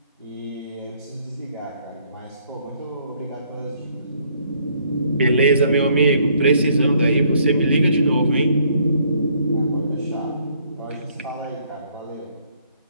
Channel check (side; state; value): both; inverted; correlation -0.65